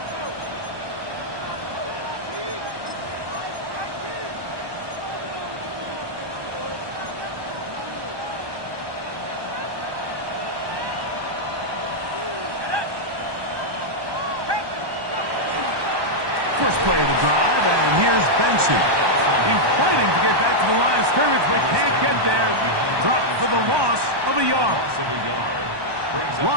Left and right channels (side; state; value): left; late; 1.2 ms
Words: First play of the drive, and here's Benson. He's fighting to get back to the line of scrimmage, but can't get there. Dropped for the loss of a yard.